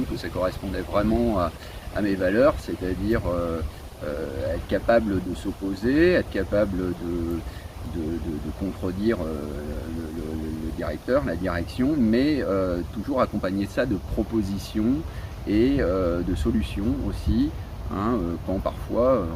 que ça correspondait vraiment à mes valeurs, c'est-à-dire être capable de s'opposer, être capable de contredire le directeur, la direction, mais toujours accompagner ça de propositions et de solutions aussi, quand parfois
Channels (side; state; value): both; identical; correlation 1.00